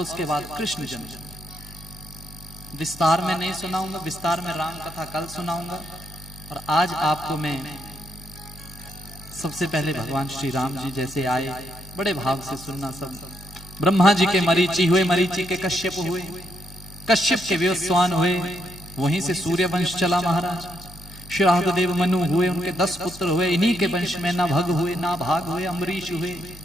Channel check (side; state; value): both; normal; correlation 0.77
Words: उसके बाद कृष्ण जन्म। विस्तार में नहीं सुनाऊंगा, विस्तार में राम कथा कल सुनाऊंगा। और आज आपको मैं सबसे पहले भगवान श्री राम जी जैसे आए, बड़े भाव से सुनना। सब ब्रह्मा जी के मरीचि हुए, मरीचि के कश्यप हुए, कश्यप के विवस्वान हुए, वहीं से सूर्य वंश चला महाराज। श्राद्ध देव मनु हुए, उनके 10 पुत्र हुए। इन्हीं के वंश में ना भग हुए, ना भाग हुए, अम्बरीश हुए,